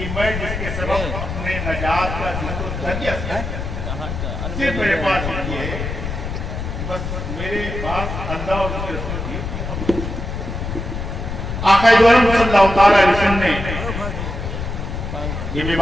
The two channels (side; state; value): left; noise; rumble, 5 dB below the sound